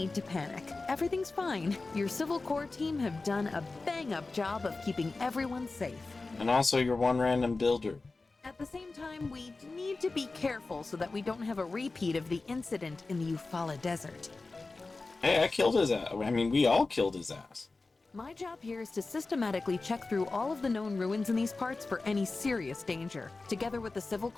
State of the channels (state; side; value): quieter; right; 3.6 dB